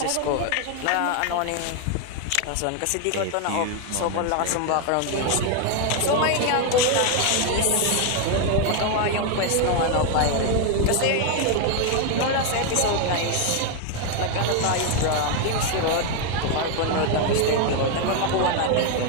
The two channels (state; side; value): different; both; correlation 0.01